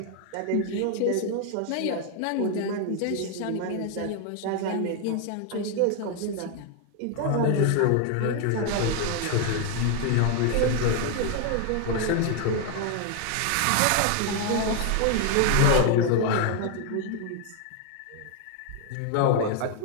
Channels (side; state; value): both; different; correlation 0.00